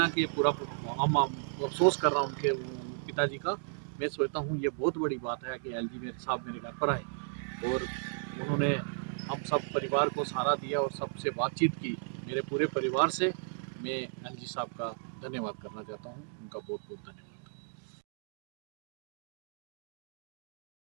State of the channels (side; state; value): left; silent; digital silence